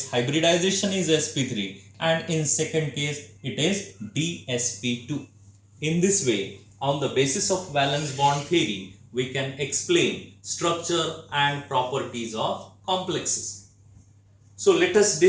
hybridization is sp3 and in second case it is dsp2. In this way, on the basis of valence bond theory, we can explain structure and properties of complexes. So let us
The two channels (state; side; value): identical; both; correlation 1.00